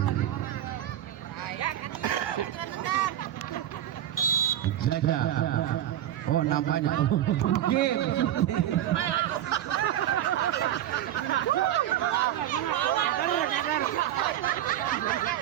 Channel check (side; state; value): left; quieter; 11.9 dB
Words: Jaga. Oh, nampaknya game.